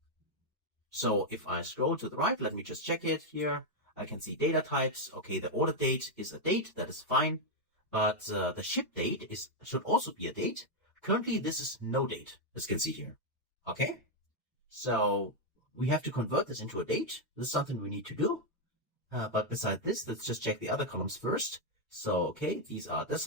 So if I scroll to the right, let me just check it here. I can see data types. Okay, the order date is a date, that is fine. But the ship date should also be a date. Currently, this is no date, as you can see here. Okay, so we have to convert this into a date. This is something we need to do. But beside this, let's just check the other columns first. So, okay, these are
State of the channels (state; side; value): normal; both; correlation 0.01